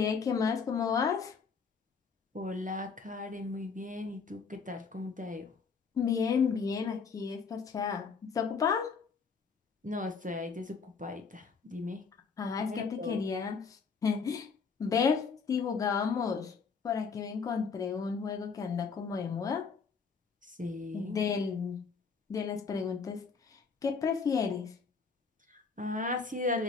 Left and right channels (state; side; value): quieter; right; 5.4 dB